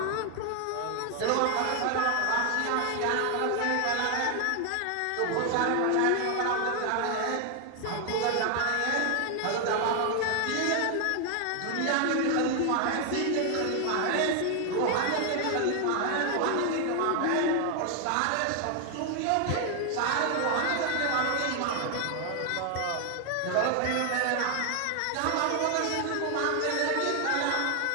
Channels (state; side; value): different; both; correlation 0.01